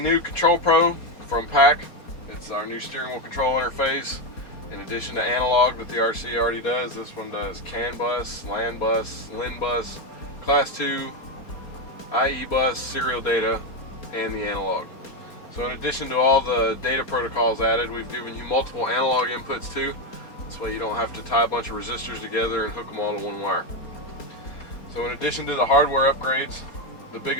new Control Pro from PAC. It's our new steering wheel control interface. In addition to analog that the RC already does, this one does CAN bus, LAN bus, LIN bus, Class 2, IE bus, serial data, and the analog. So in addition to all the data protocols added, we've given you multiple analog inputs too. This way you don't have to tie a bunch of resistors together and hook them all to one wire. So in addition to the hardware upgrades, the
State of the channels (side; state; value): right; late; 4.3 ms